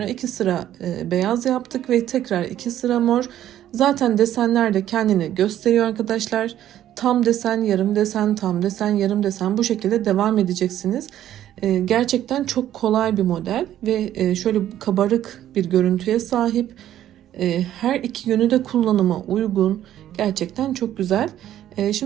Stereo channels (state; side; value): quieter; left; 12.0 dB